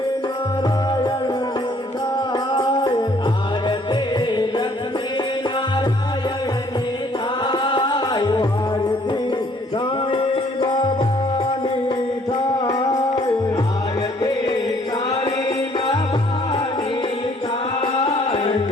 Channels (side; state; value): both; normal; correlation 0.61